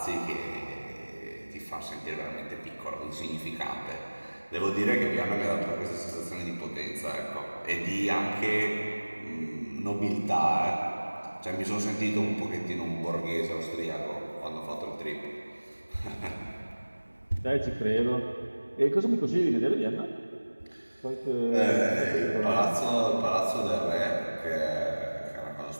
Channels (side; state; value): both; inverted; correlation -1.00